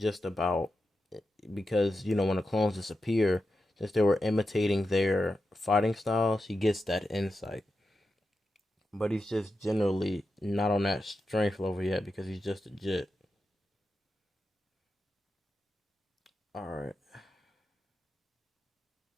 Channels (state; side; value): normal; both; correlation 0.89